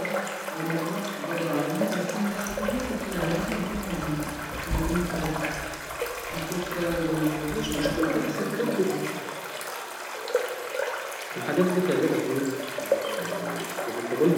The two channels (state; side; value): identical; both; correlation 1.00